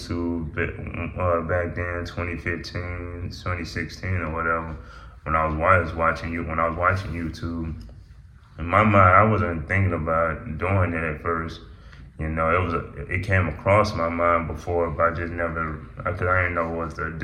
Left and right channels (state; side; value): identical; both; correlation 1.00